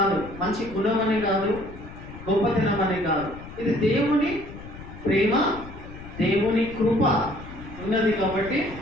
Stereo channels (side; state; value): left; noise; rumble, 14 dB below the sound